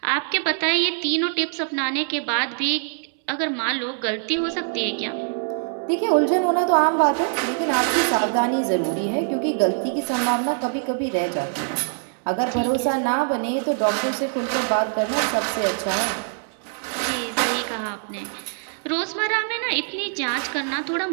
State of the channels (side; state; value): left; silent; 61 dB below the other